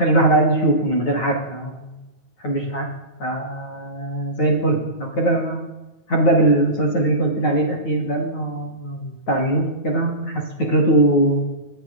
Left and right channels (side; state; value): right; late; 9.3 ms